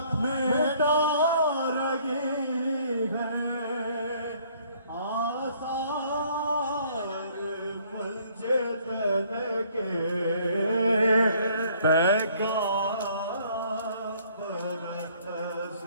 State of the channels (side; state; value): both; inverted; correlation -0.61